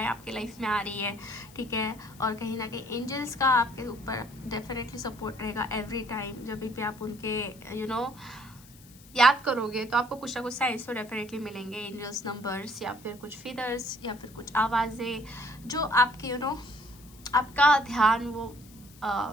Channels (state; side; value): noise; left; hiss, 23 dB below the sound